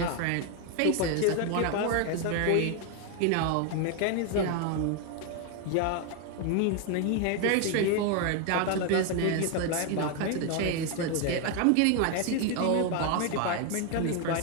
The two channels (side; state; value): both; different; correlation 0.01